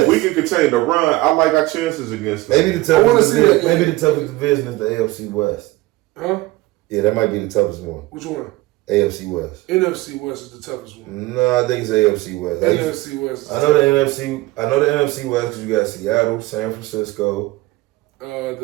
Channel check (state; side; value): quieter; left; 19.6 dB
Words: If we can continue to run, I like our chances against them. Maybe the toughest division is the AFC West. Huh? Yeah, that might be the toughest one. Which one? AFC West. NFC West is the toughest one. No, I think it's AFC West. NFC West. I know the NFC West because you got Seattle, San Francisco. You